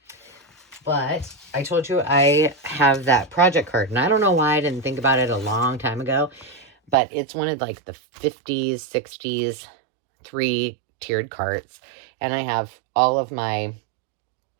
But I told you I have that project card. And I don't know why I didn't think about it a long time ago. But it's one of like the 50s, 60s, 3-tiered carts. And I have all of my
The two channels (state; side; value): drops out; left; at 7.0 s